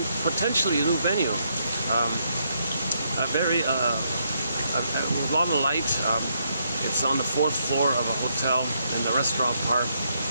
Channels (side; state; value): both; inverted; correlation -0.76